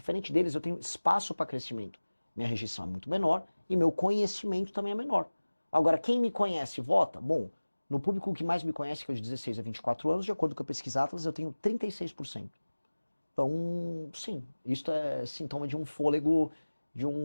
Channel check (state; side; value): inverted; both; correlation -1.00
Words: deles, eu tenho espaço para crescimento. Minha rejeição é muito menor e meu conhecimento também é menor. Agora, quem me conhece vota? Bom, no público que mais me conhece, que é de 16 a 24 anos, de acordo com a pesquisa Atlas, eu tenho 36%. Então, sim, isto é sintoma de um fôlego de